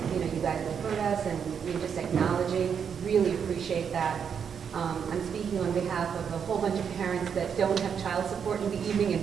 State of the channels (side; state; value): left; quieter; 7.2 dB